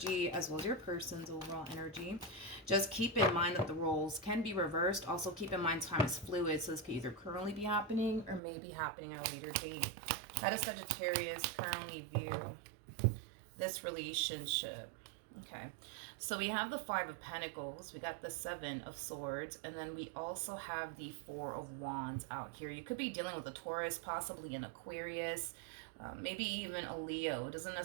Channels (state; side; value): drops out; left; at 8.4 s